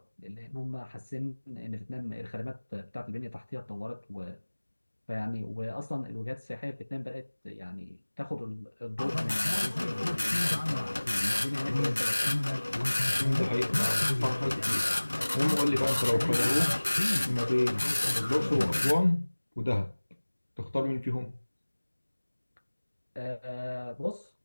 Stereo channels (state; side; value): inverted; both; correlation -1.00